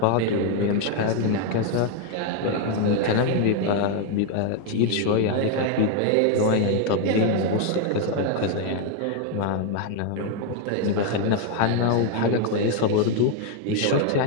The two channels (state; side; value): different; both; correlation 0.01